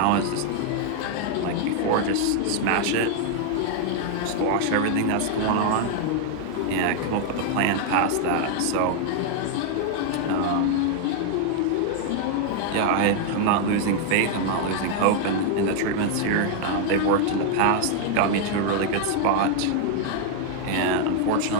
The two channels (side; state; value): both; different; correlation 0.00